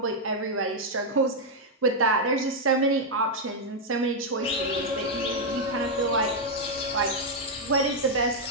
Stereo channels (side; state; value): both; normal; correlation -0.01